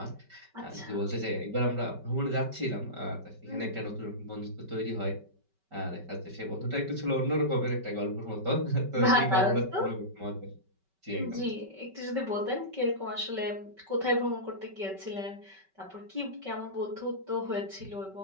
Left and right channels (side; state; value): left; late; 5.3 ms